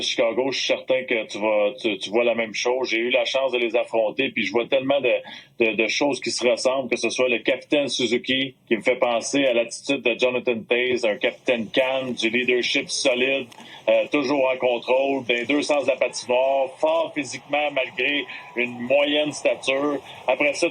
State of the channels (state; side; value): identical; both; correlation 1.00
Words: Chicago. Je suis certain que tu vois la même chose. J'ai eu la chance de les affronter, puis je vois tellement de choses qui se ressemblent, que ce soit le capitaine Suzuki, qui me fait penser à l'attitude de Jonathan Toews, un capitaine calme, du leadership solide, toujours en contrôle, dans les deux sens de la patinoire, fort physiquement malgré une moyenne stature. Après ça,